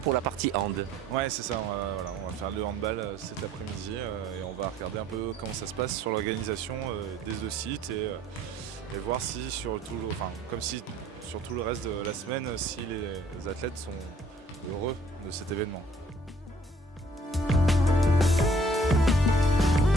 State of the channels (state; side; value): normal; both; correlation 0.59